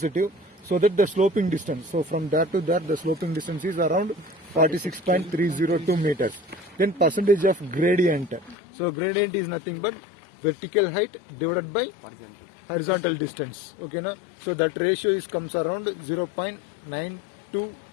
So that the sloping distance. So from there to there, the sloping distance is around 46.302 meters. Then percentage of gradient. So gradient is nothing but vertical height divided by horizontal distance. Okay now, so that ratio is comes around 0.92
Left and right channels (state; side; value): drops out; right; at 8.6 s